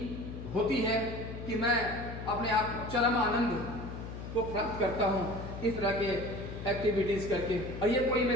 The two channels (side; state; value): left; noise; hum, 9 dB below the sound